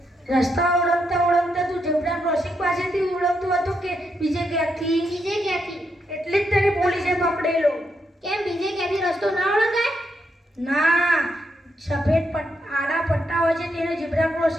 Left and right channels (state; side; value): normal; both; correlation 0.80